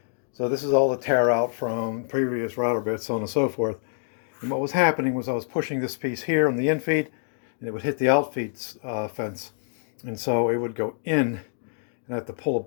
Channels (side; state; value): right; silent; digital silence